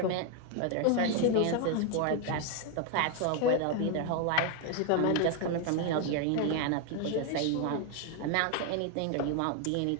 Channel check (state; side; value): different; both; correlation 0.01